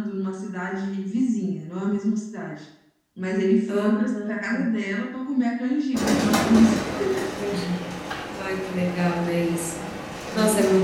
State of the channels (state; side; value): identical; both; correlation 1.00